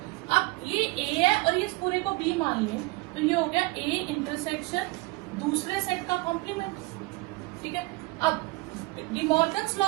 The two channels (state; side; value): quieter; left; 22.9 dB